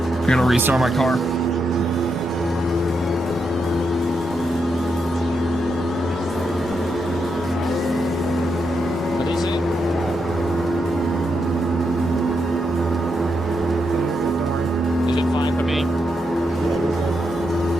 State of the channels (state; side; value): normal; both; correlation 0.83